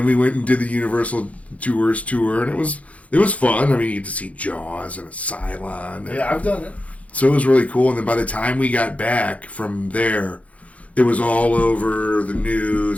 we went and did the Universal Tours tour, and it was fun. I mean, you get to see Jaws and a Cylon. Yeah, I've done it. So it was really cool, and then by the time we got back from there, it was all over the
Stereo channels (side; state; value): right; late; 0.066 ms